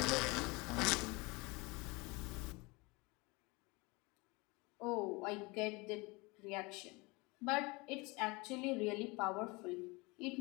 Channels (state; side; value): quieter; right; 25.8 dB